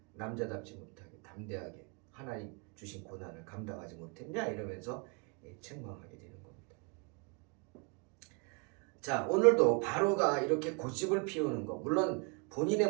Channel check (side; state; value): left; quieter; 34.3 dB